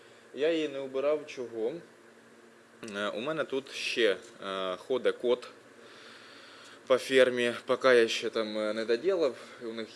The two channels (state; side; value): identical; both; correlation 1.00